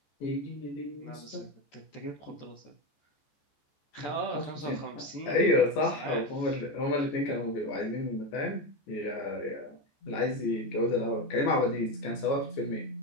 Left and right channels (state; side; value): late; right; 14 ms